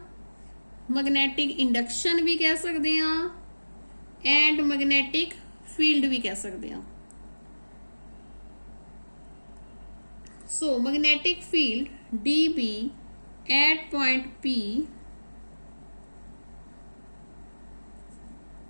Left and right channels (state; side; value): inverted; both; correlation -1.00